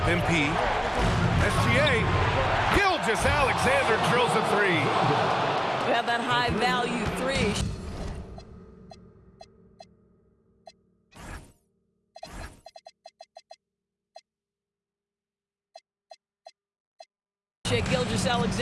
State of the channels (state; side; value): identical; both; correlation 1.00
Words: MP. SGA. Gilgeous Alexander drills a three. We have that high-value three. Gilgeous